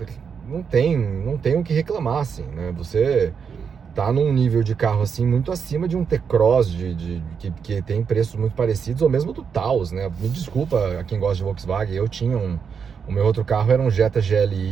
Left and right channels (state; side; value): quieter; left; 6.5 dB